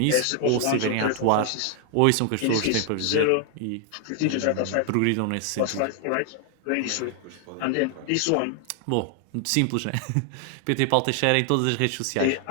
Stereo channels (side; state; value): both; different; correlation 0.00